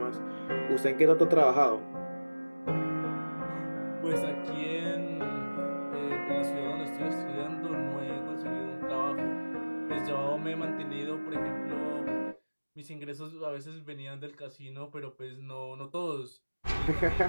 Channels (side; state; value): both; inverted; correlation -1.00